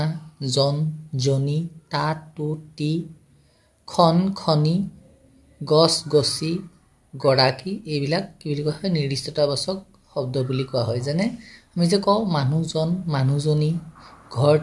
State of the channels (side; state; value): both; identical; correlation 1.00